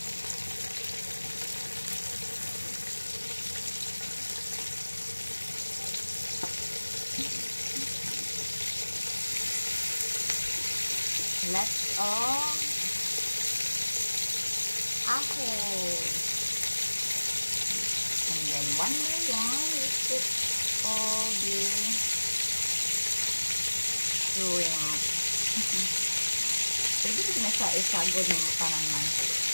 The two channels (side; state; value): both; inverted; correlation -1.00